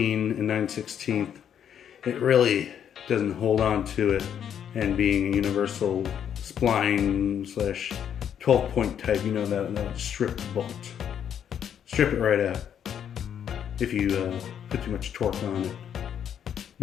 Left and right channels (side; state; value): right; quieter; 8.9 dB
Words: and 9/16, it really doesn't hold on to it. And being a universal spline / 12-point type, that would strip the bolt. Strip it right out if you put too much torque on it.